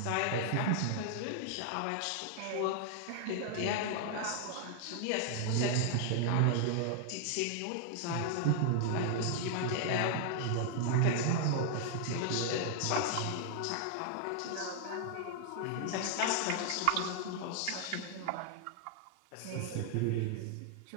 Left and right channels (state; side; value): different; both; correlation 0.00